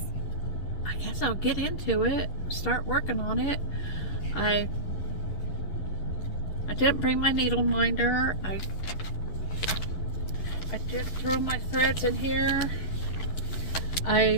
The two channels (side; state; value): right; late; 11 ms